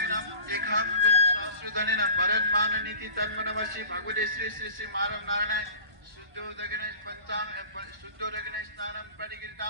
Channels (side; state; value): left; late; 1.5 ms